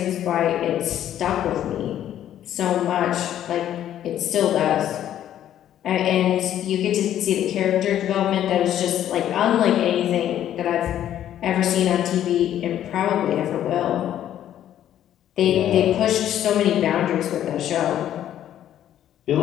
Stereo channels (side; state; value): right; quieter; 11.3 dB